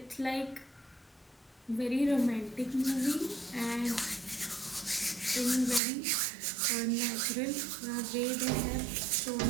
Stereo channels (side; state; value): left; drops out; at 5.8 s